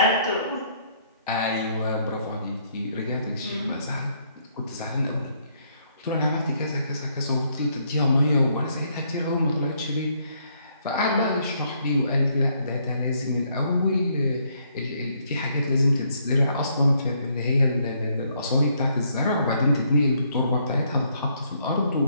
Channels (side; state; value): both; inverted; correlation -0.70